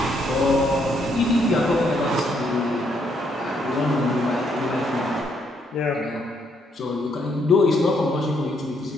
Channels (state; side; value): normal; both; correlation 0.73